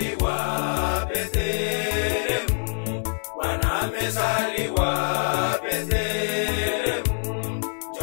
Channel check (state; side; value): silent; right; digital silence